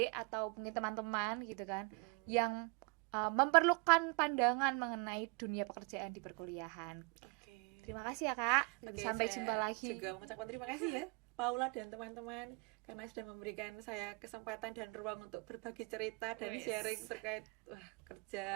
atau mungkin teman-teman gitu kan yang memerlukan pandangan mengenai dunia pekerjaan di perkuliahan. Terima kasih ya Kak. Sampai jumpa lagi. Juga mengucapkan terima kasih ya Paula dan teman-teman karena sudah memberikan saya kesempatan dan ruang untuk berbagi cerita dan sharing terkait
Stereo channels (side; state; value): left; quieter; 32.5 dB